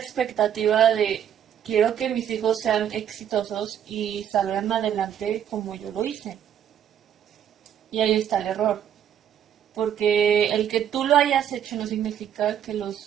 de quiero que mis hijos sean exitosos y salgan adelante como yo lo hice. Y ahí está el error, porque el que tú lo hayas hecho no significa que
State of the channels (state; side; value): quieter; left; 9.6 dB